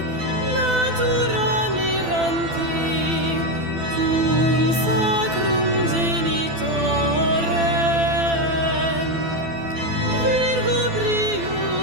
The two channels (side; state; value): left; late; 12 ms